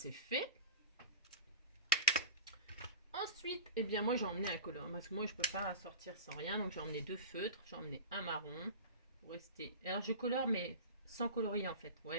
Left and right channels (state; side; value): inverted; both; correlation -0.31